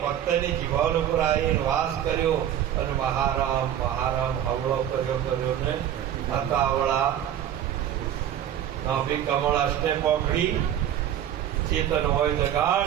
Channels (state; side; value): quieter; left; 10.6 dB